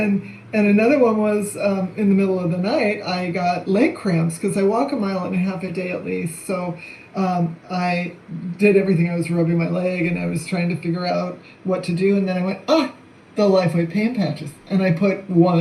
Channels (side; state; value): both; identical; correlation 1.00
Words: another one was in the middle of the night, I got leg cramps because I walk 1.5 miles a day at least. So I did everything. I was rubbing my leg and I was trying to figure out what to do. And then I went, the LifeWave pain patches. And I put